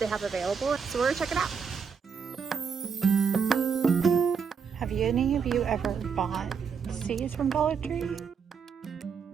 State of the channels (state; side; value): quieter; left; 6.3 dB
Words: have available. So we're gonna check it out. Have any of you ever bought seeds from Dollar Tree?